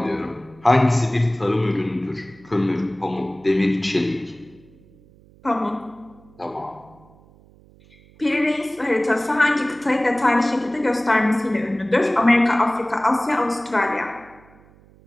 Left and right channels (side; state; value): right; noise; hum, 27 dB below the sound